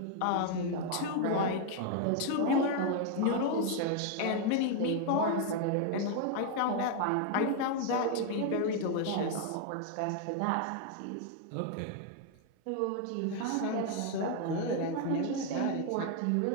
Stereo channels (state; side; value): different; both; correlation 0.00